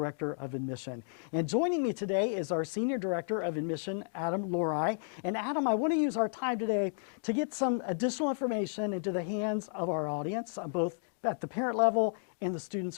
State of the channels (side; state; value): right; silent; digital silence